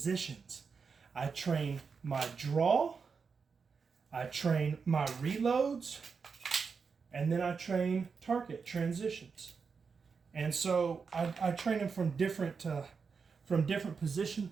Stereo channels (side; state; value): left; quieter; 5.4 dB